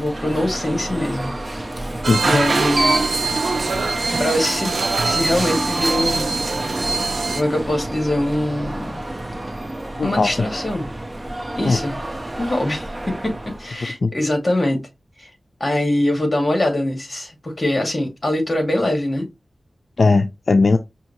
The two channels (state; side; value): normal; both; correlation 0.94